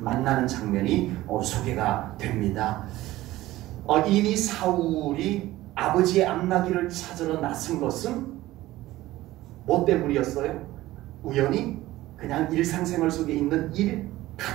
장면이 소개가 됩니다. 이미 사울이 아버지의 암나기를 찾으러 나선 것은 뭐 때문이었어요? 우연히 그냥 일상생활 속에 있는 일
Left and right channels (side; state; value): left; quieter; 16.6 dB